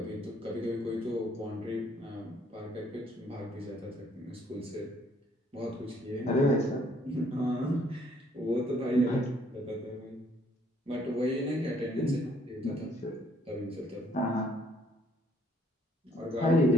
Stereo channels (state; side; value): normal; both; correlation 0.65